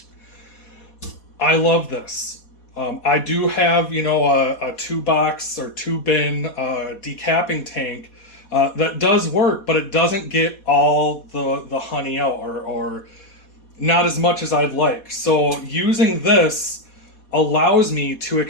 I love this. I do have, you know, a 2-box or 2-bin decapping tank that does work, but it doesn't get all the honey out, or not as much as I'd like. So using this allows me to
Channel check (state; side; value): late; right; 4.2 ms